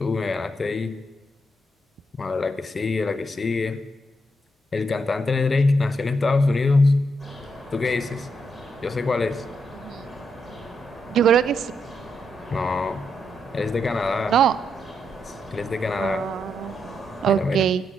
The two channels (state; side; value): normal; both; correlation 0.80